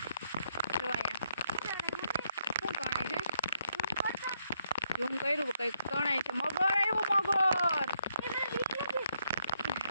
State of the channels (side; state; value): both; inverted; correlation -0.76